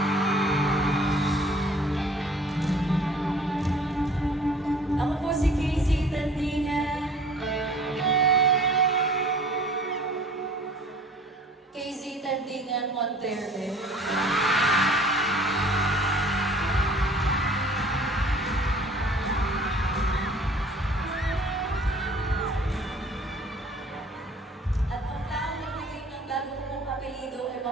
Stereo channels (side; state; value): both; normal; correlation 0.50